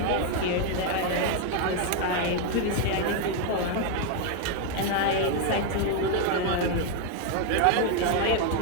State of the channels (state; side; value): different; both; correlation 0.01